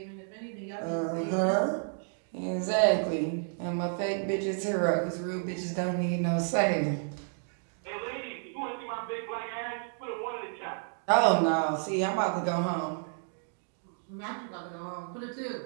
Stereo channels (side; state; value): left; silent; 57 dB below the other